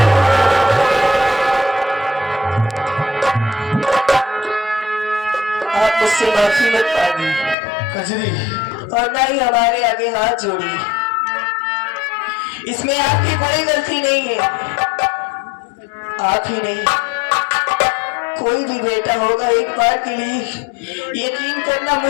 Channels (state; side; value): drops out; right; at 7.6 s